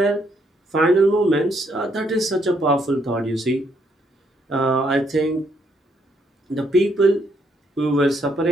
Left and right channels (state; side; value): normal; both; correlation 0.73